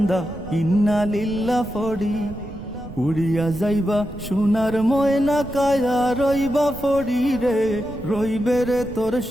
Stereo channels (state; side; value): noise; right; rumble, 14 dB below the sound